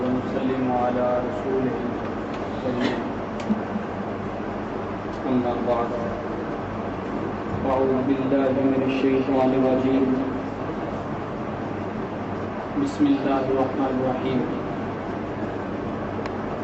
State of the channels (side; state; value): both; identical; correlation 1.00